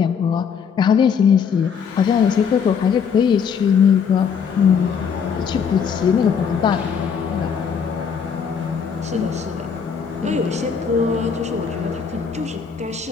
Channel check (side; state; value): right; quieter; 6.8 dB